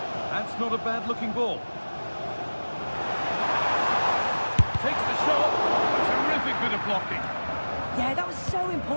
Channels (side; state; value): both; inverted; correlation -1.00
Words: That's not a bad-looking ball. Takes the shot. A terrific bit of blocking. Yeah, that was so